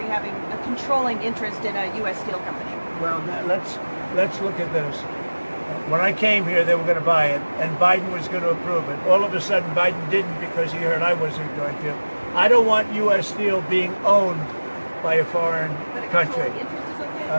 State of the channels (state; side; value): inverted; both; correlation -1.00